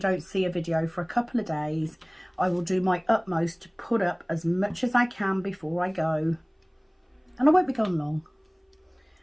see a video for a couple of days. I will do my utmost to put up as much as I can before I go. And I won't be gone long.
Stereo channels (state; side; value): identical; both; correlation 1.00